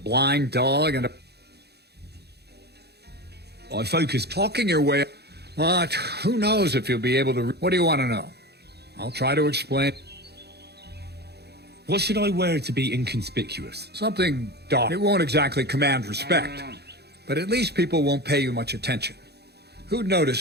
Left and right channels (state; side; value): late; left; 0.48 ms